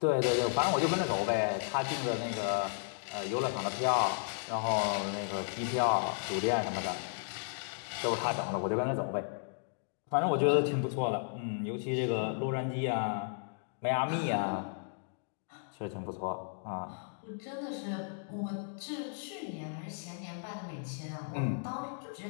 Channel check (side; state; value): right; silent; digital silence